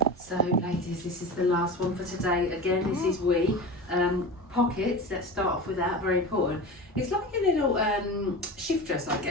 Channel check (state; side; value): normal; both; correlation 0.30